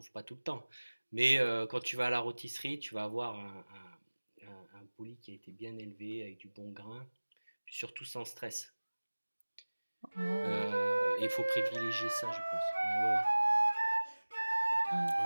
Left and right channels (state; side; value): inverted; both; correlation -1.00